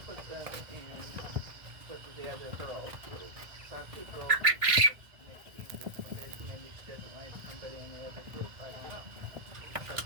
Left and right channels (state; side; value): late; left; 1.6 ms